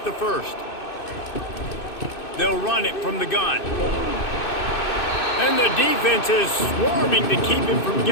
the first. They'll run it from the gun. And the defense is swarming to keep him from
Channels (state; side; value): late; right; 2.6 ms